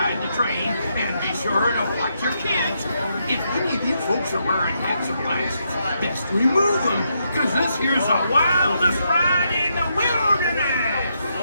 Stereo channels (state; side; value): inverted; both; correlation -0.79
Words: the train, and be sure to watch your kids. If any of you folks are wearing hats or glasses, best remove them, because this here's the wildest ride in the wilderness!